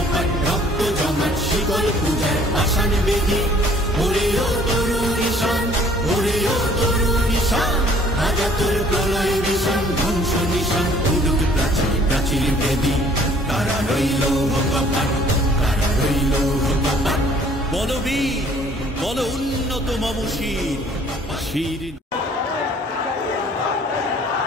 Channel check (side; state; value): both; normal; correlation 0.56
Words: রক্ত জমাট শিকল পূজার পাষাণ বেদি, ওরেও তরুণ ঈশান, ওরেও তরুণ ঈশান, রাজা তোর প্রলয় বিষাণ, ধ্বংস নিশান, উডুক প্রাচীর প্রাচীর বেদি, কারা রইল কপাট, কারা রইল কপাট। বলবীর বল উন্নত মম শির, শির